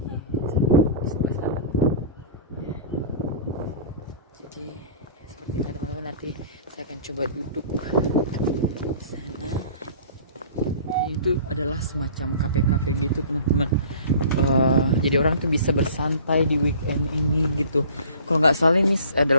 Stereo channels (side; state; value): both; inverted; correlation -0.44